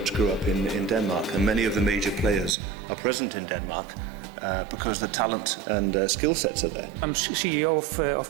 grew up in Denmark, and many of the major players are present in Denmark because the talent and skill sets are there. I'm CEO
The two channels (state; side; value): drops out; left; at 2.6 s